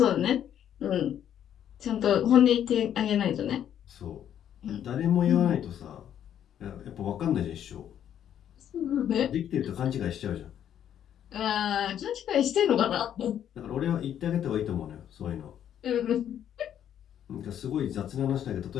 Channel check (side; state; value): right; quieter; 10.0 dB